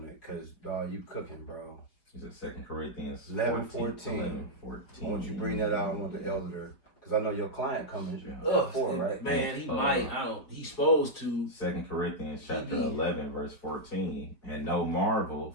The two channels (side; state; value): right; late; 4.7 ms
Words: it, because dog, you cooking, bro. Is it 2 Corinthians 11:14? I want you to bring that out. I want the elder. Because I know your client coming before, right? Man, he might. He's supposed to. 2 Corinthians chapter 11, verse 14. And no marvel,